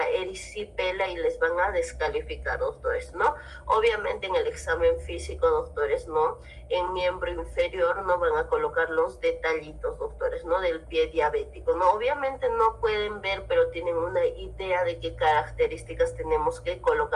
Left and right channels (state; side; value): identical; both; correlation 1.00